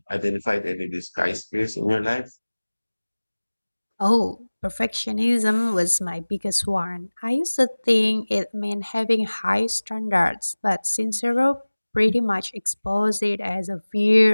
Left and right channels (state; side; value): inverted; both; correlation -1.00